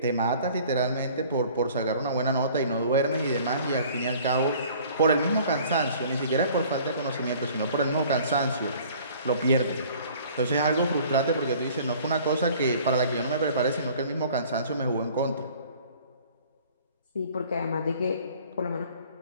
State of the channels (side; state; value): both; inverted; correlation -0.51